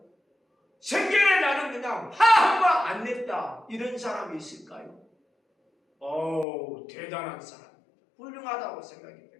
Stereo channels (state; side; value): drops out; right; at 6.5 s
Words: 생전에 나는 그냥 화 한 번 안 냈다 이런 사람이 있을까요? 대단한 사람입니다. 훌륭하다고 생각이